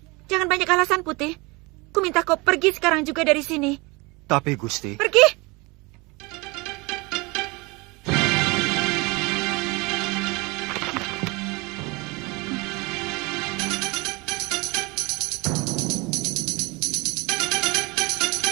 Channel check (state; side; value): quieter; left; 25.6 dB